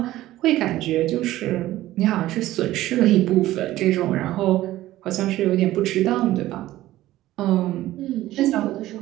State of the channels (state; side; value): quieter; left; 15.4 dB